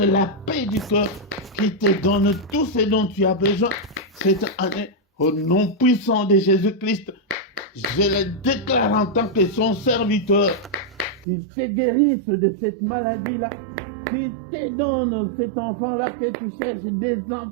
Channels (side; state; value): left; drops out; at 11.2 s